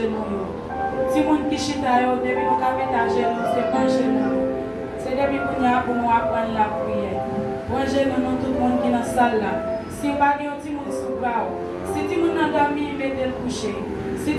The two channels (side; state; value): both; identical; correlation 1.00